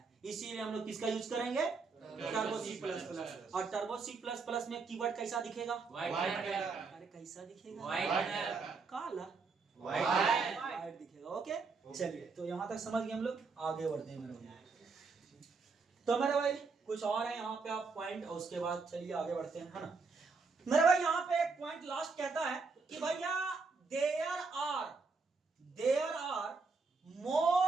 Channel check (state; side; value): quieter; left; 4.5 dB